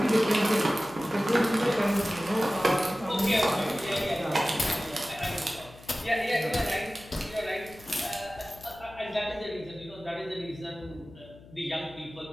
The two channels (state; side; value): noise; left; hum, 21 dB below the sound